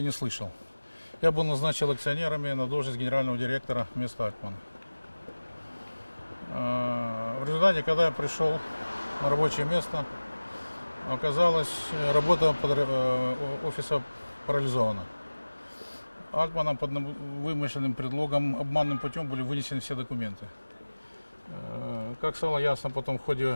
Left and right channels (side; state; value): both; inverted; correlation -1.00